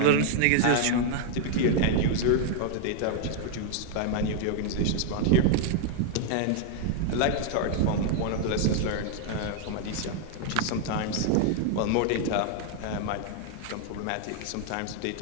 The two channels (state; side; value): different; both; correlation 0.00